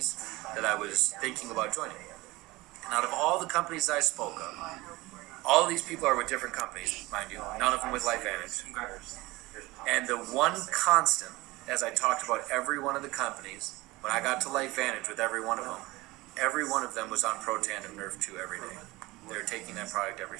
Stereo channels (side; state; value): left; quieter; 20.7 dB